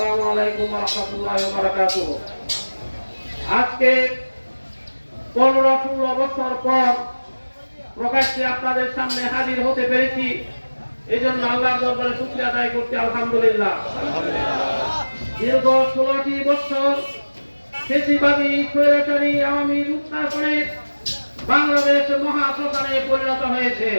আলাইকুম ওয়া রাহমাতুল্লাহি ওয়া বারাকাতুহু। আজকে 15-16 বছর পর প্রকাশ্যে আপনাদের সামনে হাজির হতে পেরেছি, এই জন্য আল্লাহর দরবারে শুকরিয়া আদায় করতে আলহামদুলিল্লাহ। দীর্ঘ 16টি বছর ফ্যাসিবাদী স্বৈরাচারী আওয়ামী লুটপাটে বাংলাদেশ মহাশ্মশানে পরিণত হয়েছে।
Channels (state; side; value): inverted; both; correlation -1.00